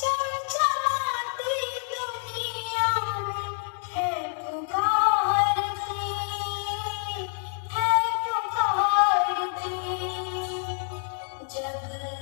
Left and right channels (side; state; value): right; silent; digital silence